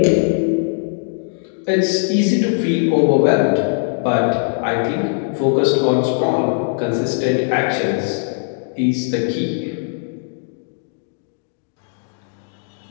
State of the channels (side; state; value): right; silent; digital silence